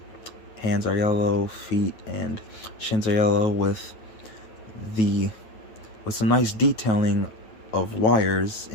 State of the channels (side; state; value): right; late; 9.2 ms